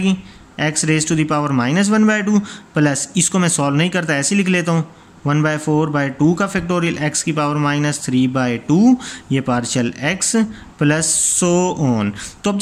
x⁻⁻² प्लस इसको मैं सॉल्व नहीं करता, ऐसे लिख लेता हूँ 1/4/2 का फैक्टोरियल, x की पावर -3/2, ये partial x plus so on. तो अब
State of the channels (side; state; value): both; identical; correlation 1.00